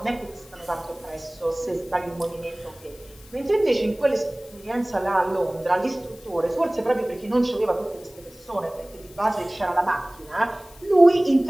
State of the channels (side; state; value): left; noise; hiss, 24 dB below the sound